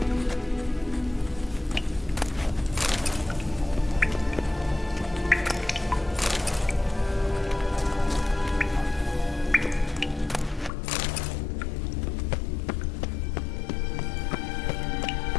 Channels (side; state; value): right; drops out; at 10.7 s